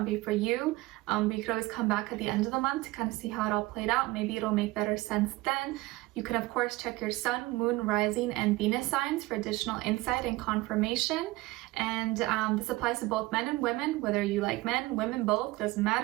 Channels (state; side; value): quieter; left; 20.3 dB